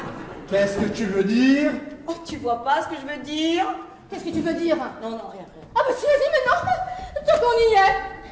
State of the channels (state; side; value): identical; both; correlation 1.00